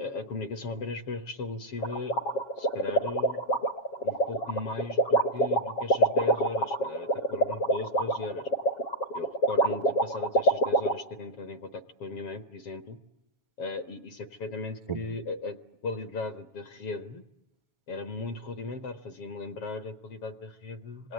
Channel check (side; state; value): right; late; 7.3 ms